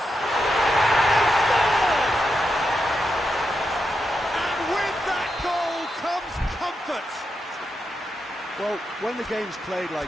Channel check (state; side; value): normal; both; correlation 0.85